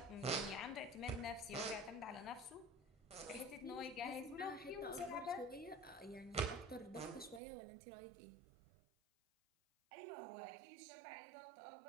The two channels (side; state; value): left; drops out; at 7.4 s